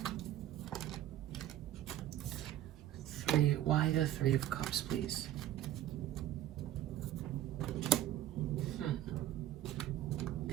Why the Three of Cups, please?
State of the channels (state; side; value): quieter; left; 13.0 dB